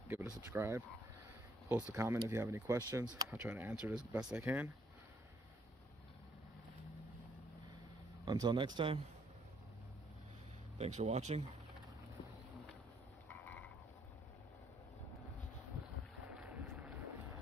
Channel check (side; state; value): both; normal; correlation 0.69